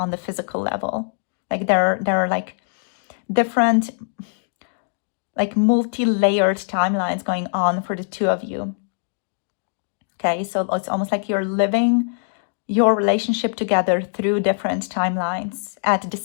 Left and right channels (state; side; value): silent; right; digital silence